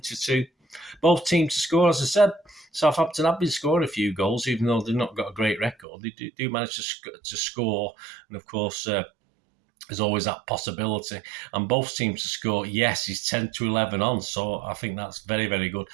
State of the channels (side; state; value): left; drops out; at 5.9 s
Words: Both teams to score, as I said. Southampton have been scoring a few goals, even though they've not got a great record. They do manage to score, and of course, there's always that possibility. And both teams to score, yes, is 10-11 on. So I think that's very, very good.